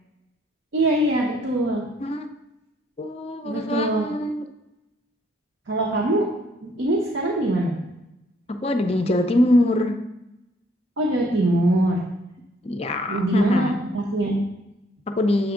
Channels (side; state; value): both; normal; correlation 0.65